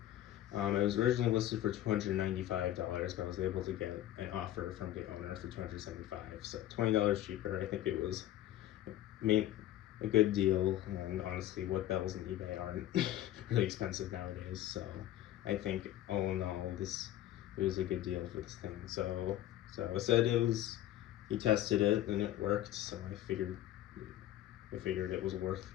It was originally listed for $295, but I was able to get an offer from the owner for $275, so $20 cheaper. I think it was a good deal, and honestly, what bells in eBay aren't really expensive nowadays, so I think all in all, it was a good deal for this thing. So I said he tested it and it worked, so I figured it was worth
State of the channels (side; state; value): right; quieter; 13.4 dB